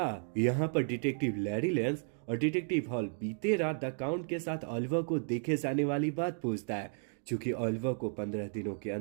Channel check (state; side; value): silent; left; 55 dB below the other